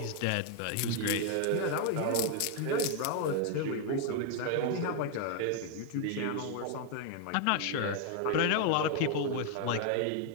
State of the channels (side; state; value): both; different; correlation 0.00